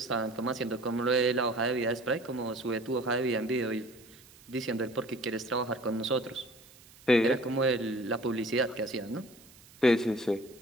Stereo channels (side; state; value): right; noise; hiss, 24 dB below the sound